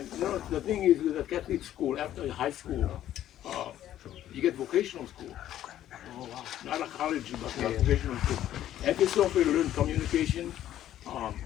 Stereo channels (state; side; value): quieter; right; 12.2 dB